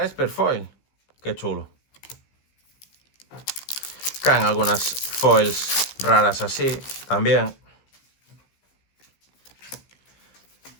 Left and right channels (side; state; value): right; late; 15 ms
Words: Esper foil. ¡Qué chulo! Caen algunas foils raras así, también.